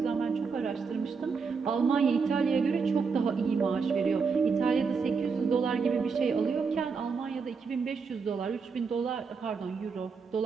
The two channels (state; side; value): quieter; left; 5.2 dB